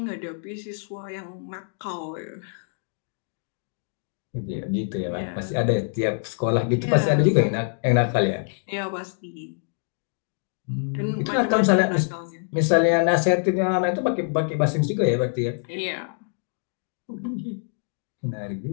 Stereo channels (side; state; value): right; silent; 61 dB below the other